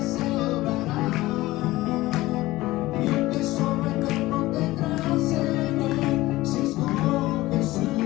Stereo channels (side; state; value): right; quieter; 18.1 dB